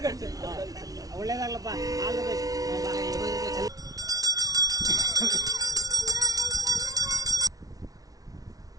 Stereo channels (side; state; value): left; late; 0.18 ms